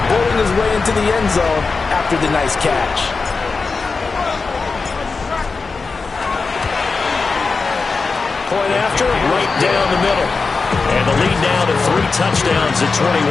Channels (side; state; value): right; quieter; 4.4 dB